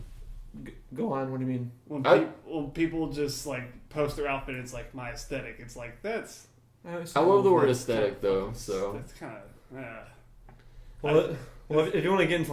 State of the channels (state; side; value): identical; both; correlation 1.00